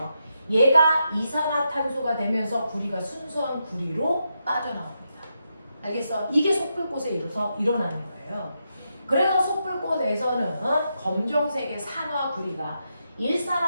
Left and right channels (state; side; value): inverted; both; correlation -0.84